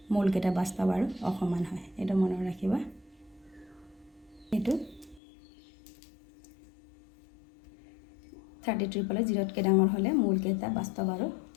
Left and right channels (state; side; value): drops out; right; at 5.2 s